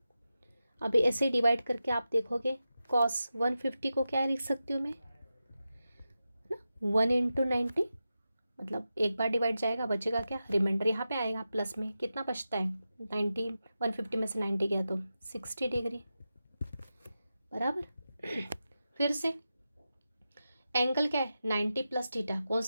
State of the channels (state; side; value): inverted; both; correlation -0.91